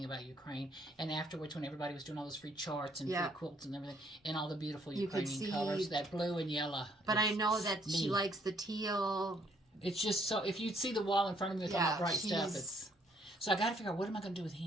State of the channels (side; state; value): both; normal; correlation 0.67